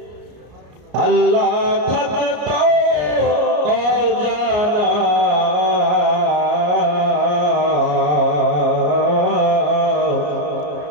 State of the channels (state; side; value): late; left; 33 ms